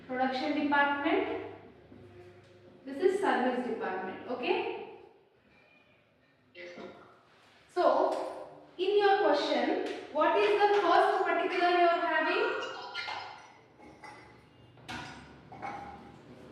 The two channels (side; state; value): both; identical; correlation 1.00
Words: department, this is service department, okay? Yes, ma'am. So, in your question, what is the first particular you are having?